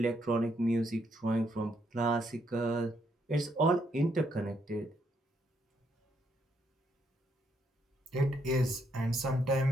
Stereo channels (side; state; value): both; normal; correlation 0.74